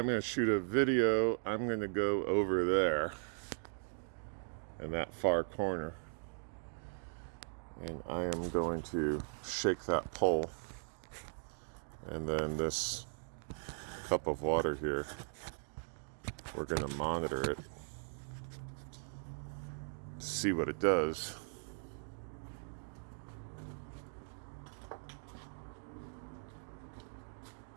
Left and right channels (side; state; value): left; silent; digital silence